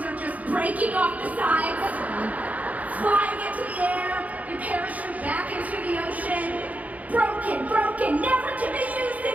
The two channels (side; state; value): left; late; 0.073 ms